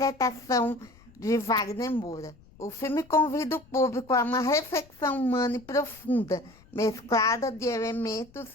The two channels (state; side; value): noise; left; rumble, 26 dB below the sound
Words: de Wagner Moura. O filme convida o público a uma reflexão humana e profunda, mesclada de elementos